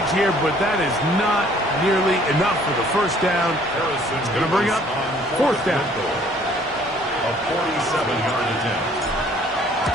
here, but that is not nearly enough for the first down. It's going to bring up 4th down. A 47-yard attempt.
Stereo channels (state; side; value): normal; both; correlation 0.58